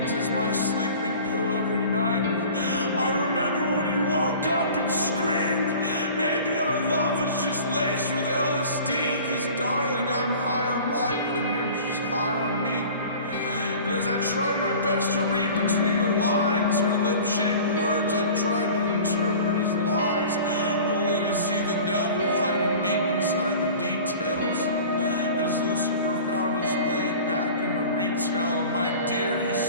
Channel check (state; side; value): inverted; both; correlation -0.42